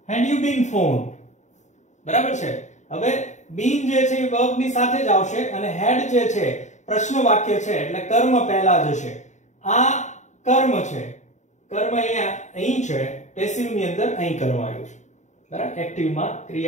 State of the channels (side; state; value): right; late; 0.34 ms